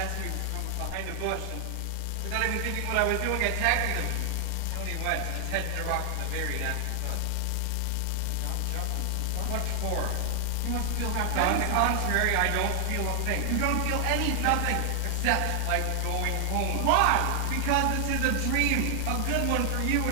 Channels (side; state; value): both; different; correlation 0.00